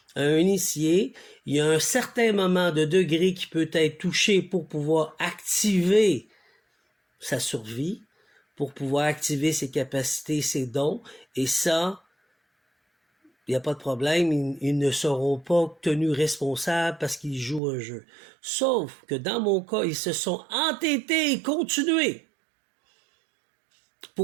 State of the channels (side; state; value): left; drops out; at 17.6 s